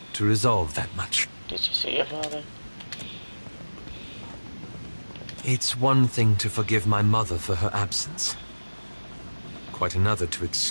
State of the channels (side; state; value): both; inverted; correlation -1.00